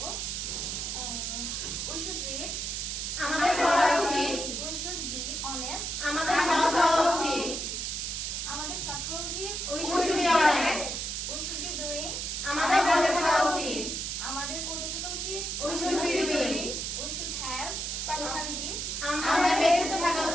We should read. আমাদের করা উচিত। We should be honest. আমাদের সৎ হওয়া উচিত। আমাদের সৎ হওয়া উচিত। We should be honest. We should be doing. আমাদের করতে থাকা উচিত। আমাদের করতে থাকা উচিত। We should be doing. We should have personality. আমাদের ব্যক্তিত্ব থাকা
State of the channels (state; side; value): noise; right; hiss, 3 dB below the sound